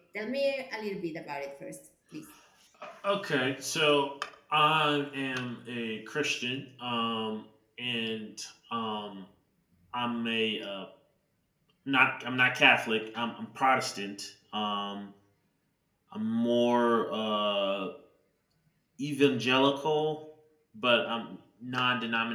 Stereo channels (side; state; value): both; identical; correlation 1.00